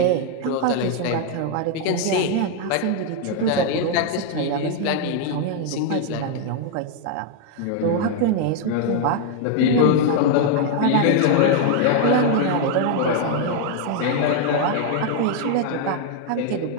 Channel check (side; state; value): both; different; correlation 0.00